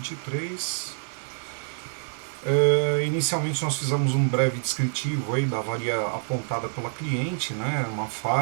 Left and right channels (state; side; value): silent; left; digital silence